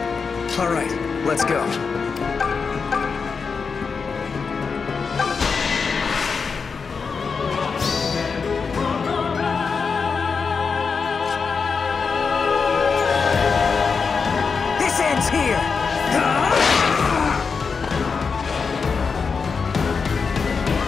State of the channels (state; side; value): quieter; right; 5.3 dB